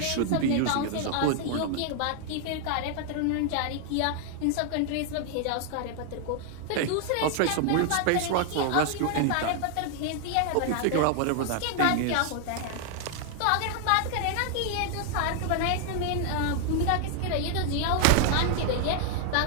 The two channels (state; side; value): different; both; correlation 0.00